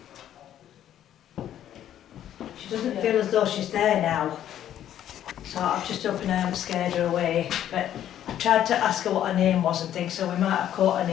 She doesn't feel as though she's there now. So I've just opened her and scared her away. But I tried to ask her what her name was and things, so we might have caught her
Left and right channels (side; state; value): right; quieter; 11.1 dB